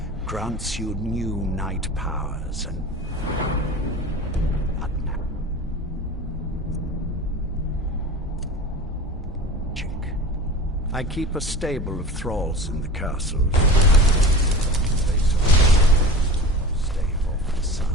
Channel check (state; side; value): normal; both; correlation 0.35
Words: grants you new night powers and... I keep a stable of thralls in the castles. Stay off the